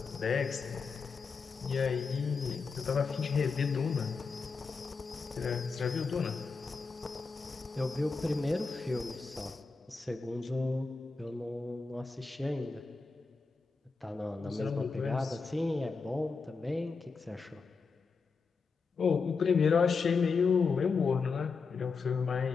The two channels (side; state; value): right; quieter; 4.8 dB